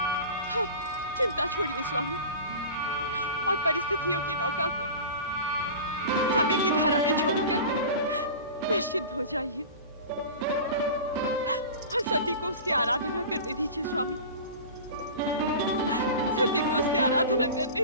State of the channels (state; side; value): inverted; both; correlation -0.35